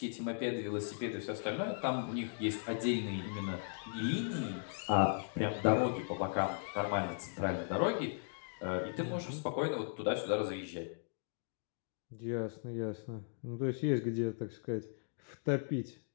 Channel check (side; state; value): right; silent; digital silence